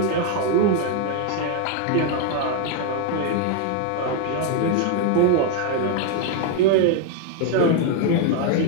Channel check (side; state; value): both; different; correlation 0.01